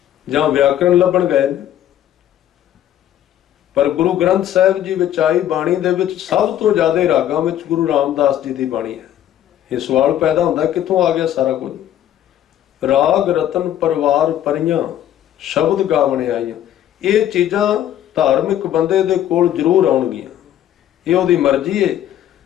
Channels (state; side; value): quieter; right; 11.5 dB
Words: ਜਾਂ ਵਿਆਕਰਣ ਲੱਭਣ ਗਏ ਨੇ। ਪਰ ਗੁਰੂ ਗ੍ਰੰਥ ਸਾਹਿਬ ਜੀ ਵਿੱਚ ਆਈ ਬਾਣੀ ਦੇ ਵਿੱਚ ਸਭ ਤੋਂ ਜ਼ਿਆਦਾ ਰਾਗਾਂ ਵਿੱਚ ਗੁਰੂ ਰਾਮਦਾਸ ਜੀ ਦੀ ਬਾਣੀ ਹੈ। ਇਹ ਸਵਾਲ ਪੈਦਾ ਹੁੰਦਾ, ਕਿੱਥੋਂ ਆ ਗਿਆ ਸਾਰਾ ਕੁਝ? ਰਾਗ ਰਤਨ ਪਰਵਾਰ ਪਰੀਆਂ, ਸ਼ਬਦ ਗਾਵਣੇ ਆਈਆਂ। ਇਹ ਚੀਜ਼ਾਂ ਧਾਰਮਿਕ ਬੰਦੇ ਦੇ ਕੋਲ ਜ਼ਰੂਰ ਆਉਣਗੀਆਂ, ਇਹ ਉਹਦੀ ਮਰਜ਼ੀ ਹੈ।